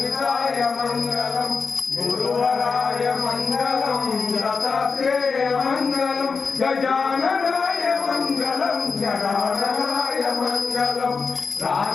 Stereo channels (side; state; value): right; quieter; 5.0 dB